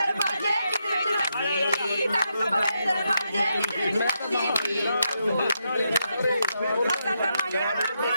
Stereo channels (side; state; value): both; inverted; correlation -0.82